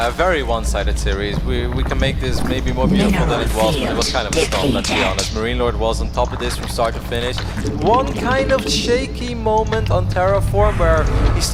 a very one-sided series. We can make this maybe more beautiful than it was, but it was kind of a storm, let's be honest. Marine Lord was on top of this from start to finish. One kind of shaky moment on Terraform where he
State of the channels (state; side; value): identical; both; correlation 1.00